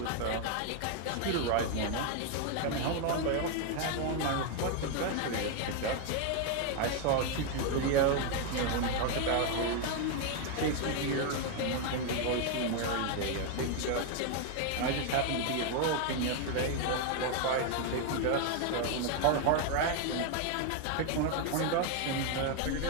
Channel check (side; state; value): both; different; correlation 0.01